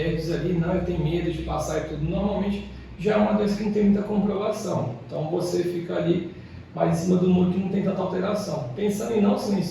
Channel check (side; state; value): both; identical; correlation 1.00